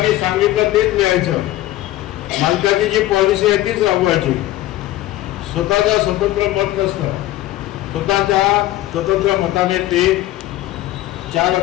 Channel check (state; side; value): quieter; right; 15.2 dB